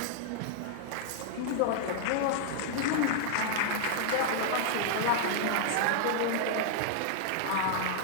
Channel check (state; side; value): different; both; correlation -0.01